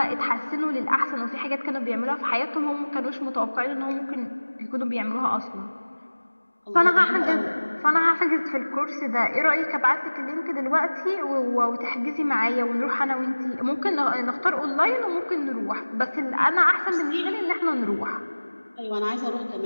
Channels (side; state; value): both; inverted; correlation -1.00